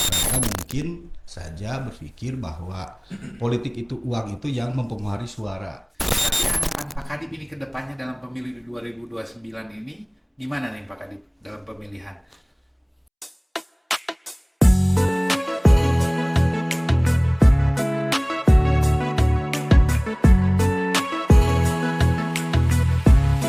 mungkin saja berpikir bahwa politik itu uang itu yang mempengaruhi suara. Tapi harapan Pak Kadip ini ke depannya dalam pemilu 2029 ini gimana nih Pak Kadip dalam pemilihan?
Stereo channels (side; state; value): both; identical; correlation 1.00